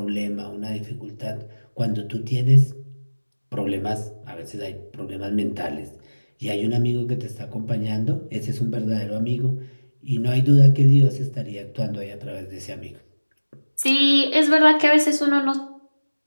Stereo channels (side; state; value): both; inverted; correlation -1.00